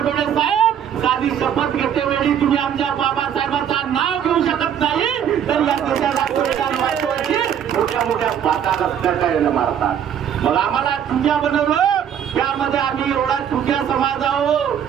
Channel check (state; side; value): quieter; left; 9.0 dB